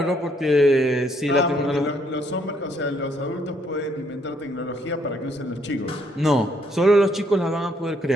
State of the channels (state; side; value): normal; both; correlation 0.70